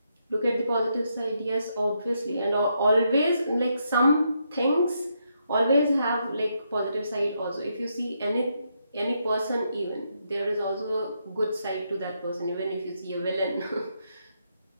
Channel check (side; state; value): both; inverted; correlation -0.79